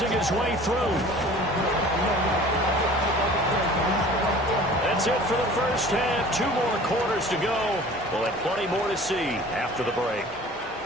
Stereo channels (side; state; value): both; normal; correlation 0.45